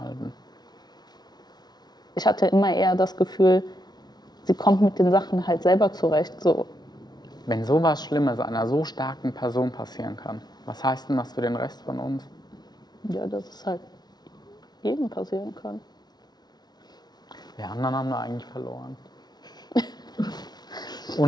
ich hatte immer eher das Gefühl, sie kommt mit den Sachen halt selber zurecht. So. Wenn sowas Schlimmes einer so starken Person passieren kann, was heißt denn das für den Rest von uns? Ja, dass es halt jedem passieren kann. Wir anderen haben da eigentlich verloren.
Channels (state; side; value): late; right; 0.19 ms